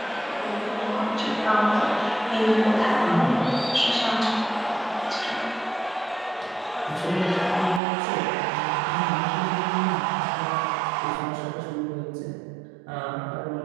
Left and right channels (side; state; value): left; drops out; at 7.8 s